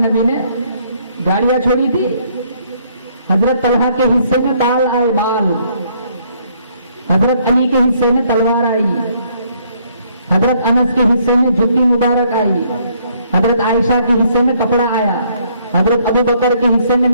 نے، گاڑیاں چھوڑی تھی. حضرت طلحہ کے حصے میں بال آئے، بال. حضرت علی کے حصے میں تلوار آئی، حضرت انس کے حصے میں جوتی مبارک آئی، حضرت عائشہ کے حصے میں کپڑا آیا، حضرت ابو بکر کے حصے میں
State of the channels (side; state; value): both; inverted; correlation -0.67